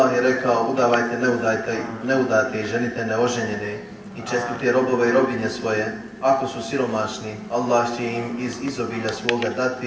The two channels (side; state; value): both; identical; correlation 1.00